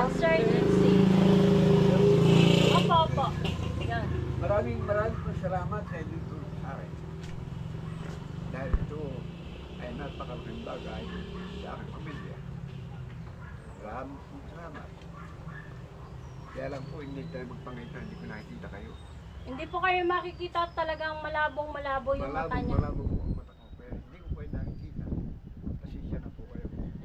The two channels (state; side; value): identical; both; correlation 1.00